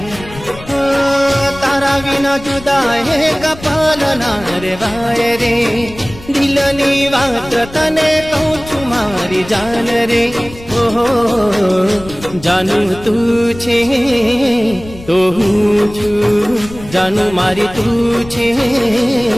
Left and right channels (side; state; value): left; noise; rumble, 16 dB below the sound